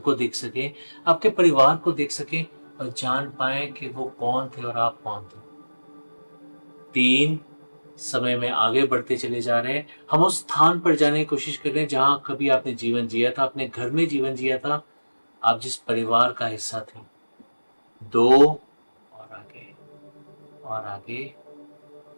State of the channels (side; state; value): both; inverted; correlation -1.00